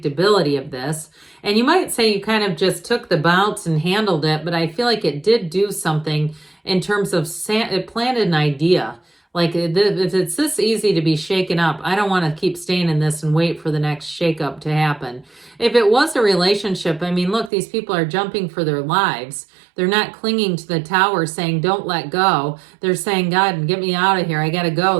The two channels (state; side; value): drops out; left; at 17.5 s